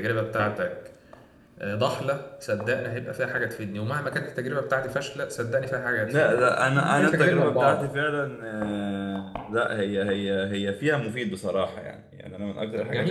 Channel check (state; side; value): identical; both; correlation 1.00